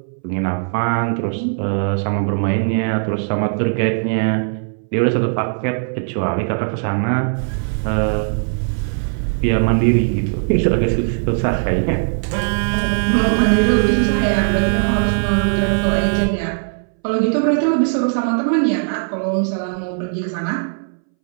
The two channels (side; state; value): left; silent; 64 dB below the other